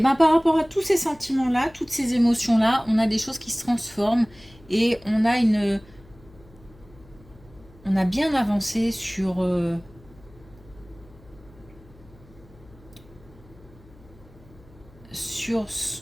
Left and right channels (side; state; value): left; noise; hum, 25 dB below the sound